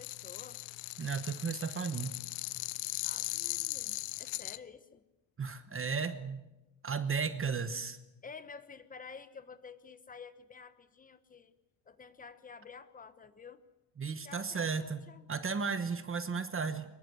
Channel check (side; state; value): both; normal; correlation 0.32